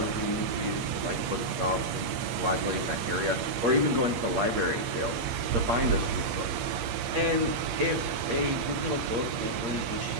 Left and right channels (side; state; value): left; late; 8.5 ms